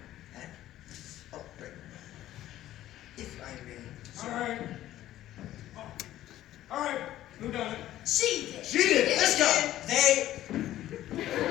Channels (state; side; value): quieter; right; 13.7 dB